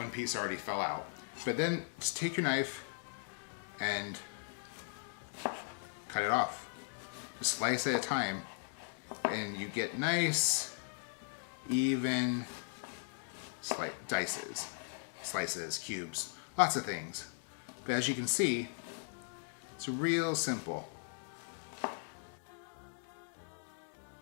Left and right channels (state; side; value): silent; right; digital silence